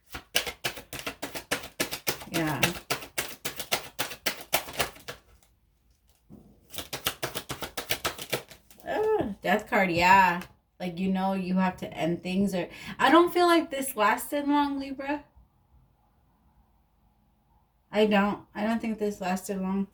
yeah. Death card, yeah. Like, you know, you have to end things. Or I don't feel like this lasted long, Libra. I don't think this lasted long.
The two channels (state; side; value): identical; both; correlation 1.00